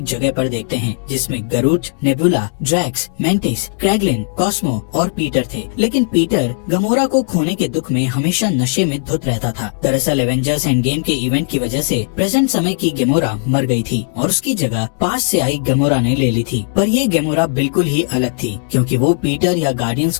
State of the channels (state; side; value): silent; right; digital silence